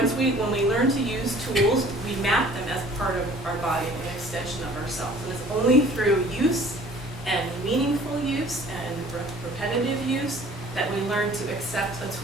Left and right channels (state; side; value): normal; both; correlation 0.51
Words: we learn to use tools, we map them as part of our body, an extension of ourselves. And it's only through use and meaningful use and repetitive use that we learn to accept a